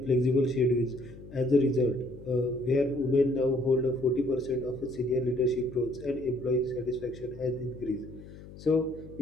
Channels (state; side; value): noise; left; hum, 17 dB below the sound